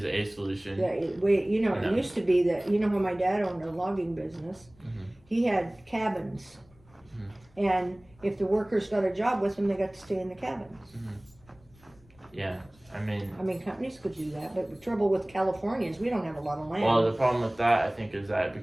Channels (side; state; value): left; noise; rumble, 28 dB below the sound